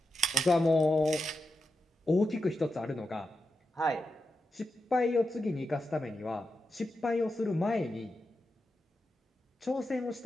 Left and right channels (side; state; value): both; normal; correlation 0.88